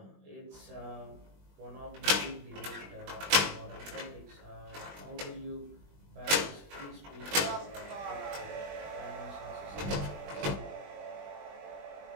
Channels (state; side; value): late; left; 20 ms